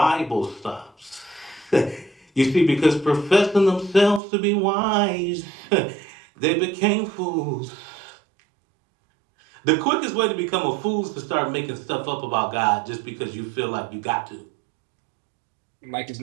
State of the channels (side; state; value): left; drops out; at 4.2 s